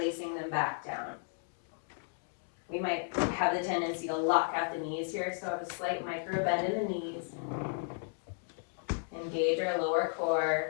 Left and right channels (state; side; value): silent; right; digital silence